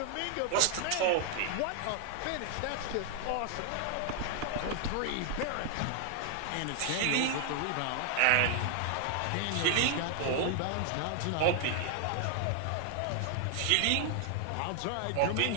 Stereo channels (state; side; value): different; both; correlation 0.00